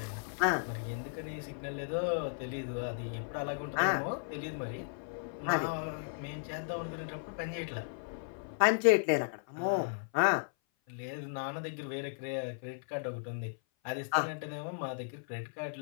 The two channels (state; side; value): silent; right; 54 dB below the other